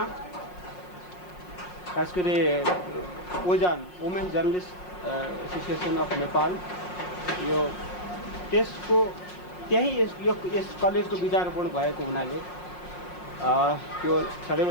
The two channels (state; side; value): late; right; 5.5 ms